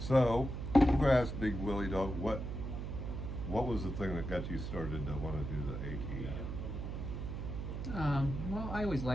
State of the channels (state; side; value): noise; right; hum, 5 dB below the sound